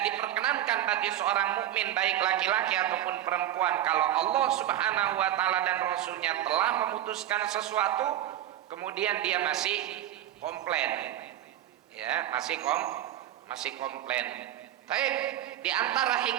diperkenankan bagi seorang mukmin baik laki-laki ataupun perempuan, kalau Allah Subhanahu wa taala dan rasulnya telah memutuskan sesuatu kemudian dia masih komplain, ya, masih komplain. Baik, di antara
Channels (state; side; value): quieter; left; 12.4 dB